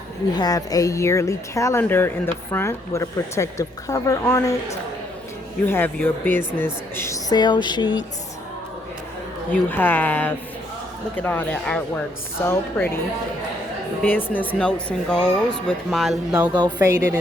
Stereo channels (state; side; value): normal; both; correlation 0.70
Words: You have a yearly calendar in the front with a protective cover on it. You have your business sales sheets. You have, look at all that artwork, so pretty. Business notes and goals with my logo faded